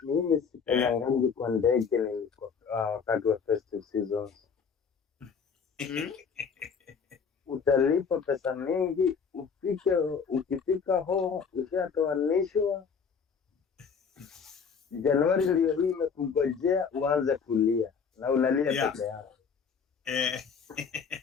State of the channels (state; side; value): quieter; right; 6.1 dB